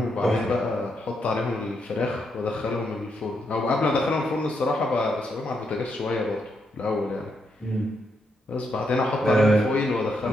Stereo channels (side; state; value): both; normal; correlation 0.80